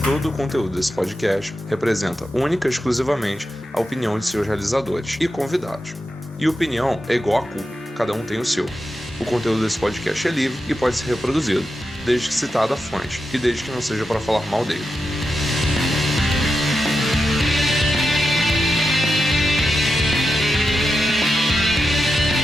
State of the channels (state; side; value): normal; both; correlation 0.89